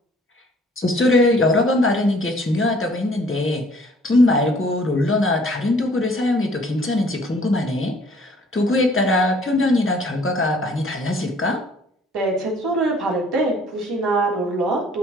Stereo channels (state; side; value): normal; both; correlation 0.57